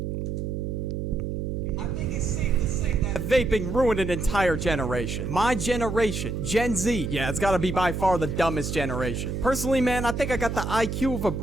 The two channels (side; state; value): right; noise; hum, 3 dB below the sound